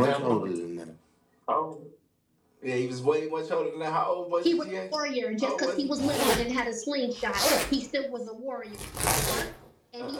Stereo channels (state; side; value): identical; both; correlation 1.00